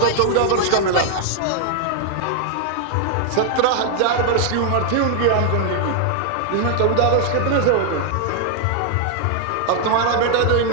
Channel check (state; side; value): different; both; correlation 0.00